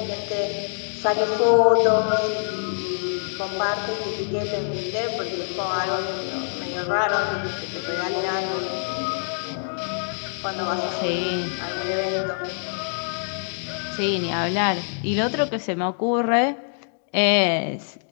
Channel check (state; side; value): silent; right; digital silence